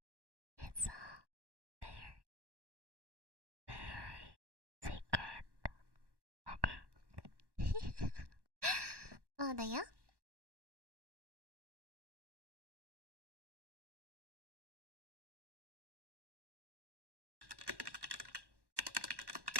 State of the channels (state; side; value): late; left; 1.1 ms